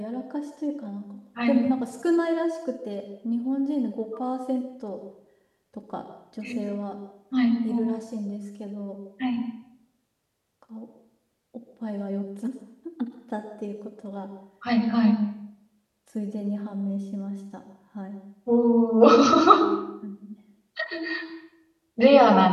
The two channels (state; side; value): identical; both; correlation 1.00